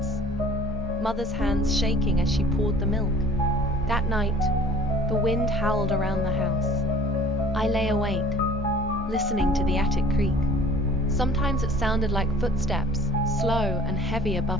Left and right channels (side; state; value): both; normal; correlation 0.50